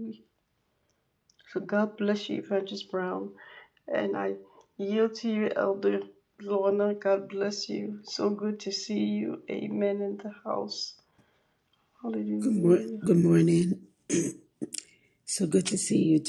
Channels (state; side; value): identical; both; correlation 1.00